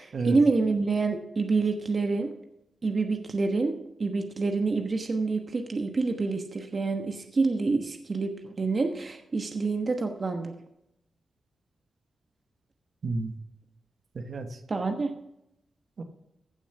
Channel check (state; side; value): quieter; left; 3.4 dB